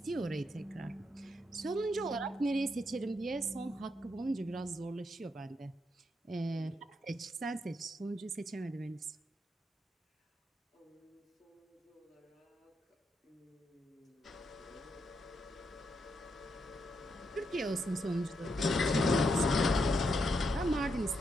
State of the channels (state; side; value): normal; both; correlation 0.80